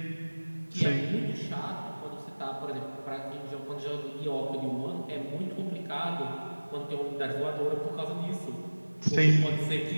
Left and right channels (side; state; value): both; inverted; correlation -1.00